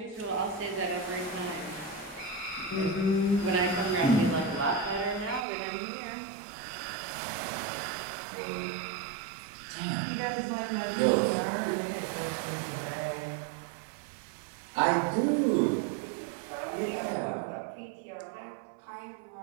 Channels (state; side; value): drops out; left; at 5.5 s